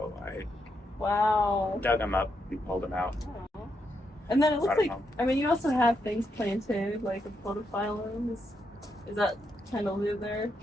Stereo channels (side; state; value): both; normal; correlation 0.81